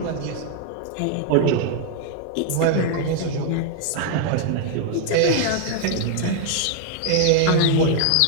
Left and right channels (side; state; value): both; different; correlation 0.00